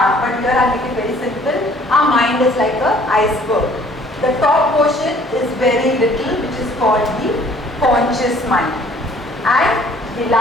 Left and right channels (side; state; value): both; normal; correlation 0.57